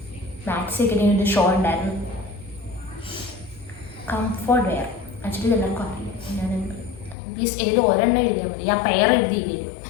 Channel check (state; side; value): drops out; right; at 7.2 s